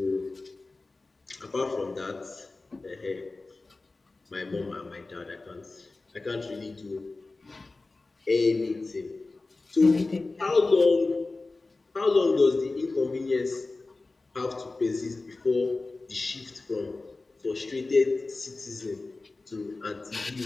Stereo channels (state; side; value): quieter; right; 3.4 dB